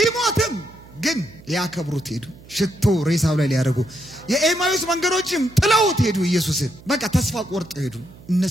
ግን ያከብሩት ሄዱ ሽቶ ሬሳው ላይ ሊያደርጉ የኤማዩስ መንገዶችም ጥለውት ሄዱ ኢየሱስን በቃ ተስፋ ቆርጠው ሄዱ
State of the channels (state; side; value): noise; right; hum, 21 dB below the sound